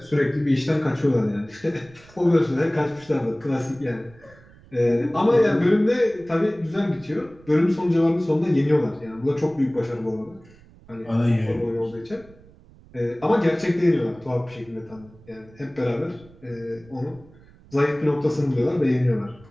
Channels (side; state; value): right; noise; rumble, 25 dB below the sound